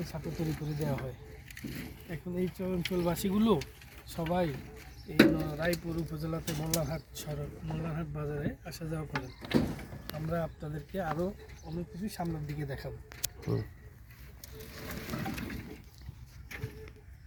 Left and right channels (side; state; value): both; identical; correlation 1.00